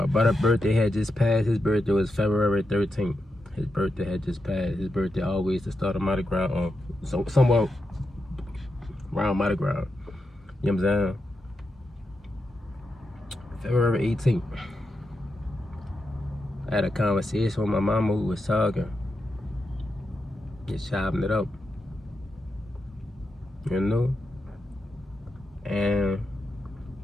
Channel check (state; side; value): normal; both; correlation 0.86